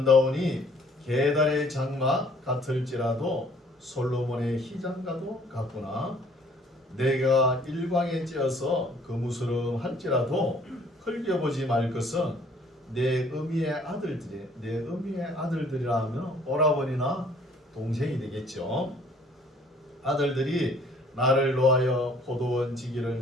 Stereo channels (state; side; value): normal; both; correlation 0.58